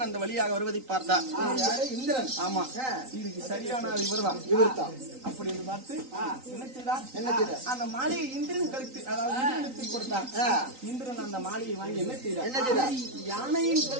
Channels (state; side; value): late; left; 3.9 ms